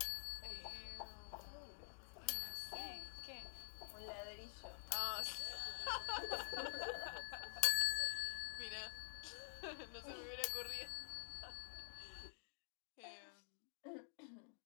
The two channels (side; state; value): right; silent; digital silence